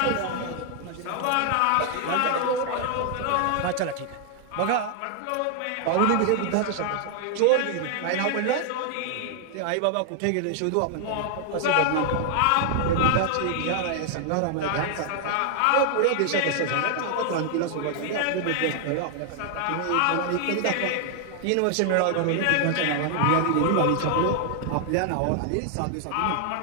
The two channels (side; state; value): both; different; correlation 0.00